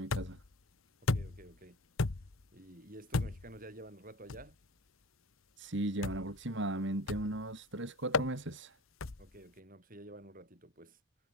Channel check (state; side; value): normal; both; correlation 0.38